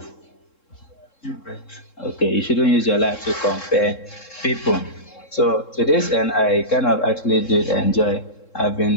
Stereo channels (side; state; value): right; late; 3.7 ms